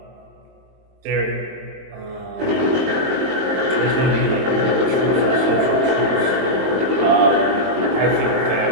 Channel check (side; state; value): left; late; 22 ms